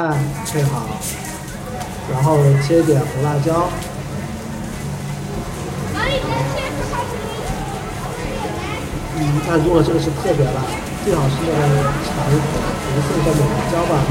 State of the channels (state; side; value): identical; both; correlation 1.00